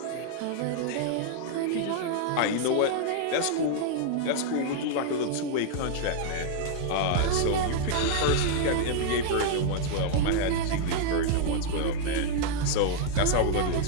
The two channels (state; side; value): different; both; correlation -0.01